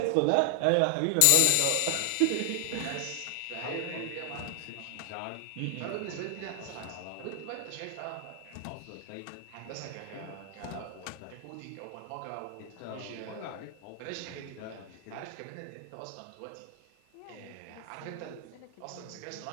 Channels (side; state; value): both; different; correlation 0.00